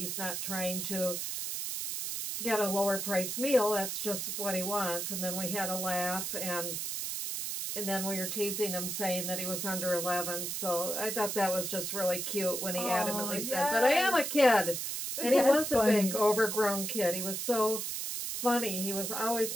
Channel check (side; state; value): right; noise; hiss, 3 dB below the sound